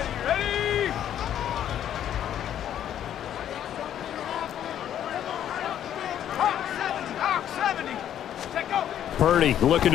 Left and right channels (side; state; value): right; quieter; 10.5 dB